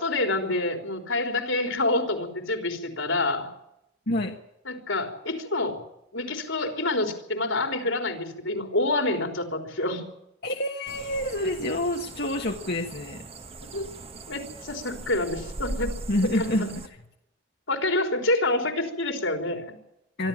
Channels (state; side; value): normal; both; correlation -0.10